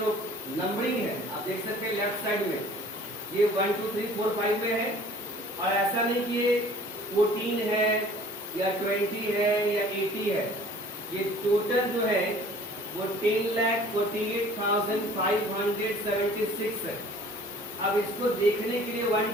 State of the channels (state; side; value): normal; both; correlation 0.50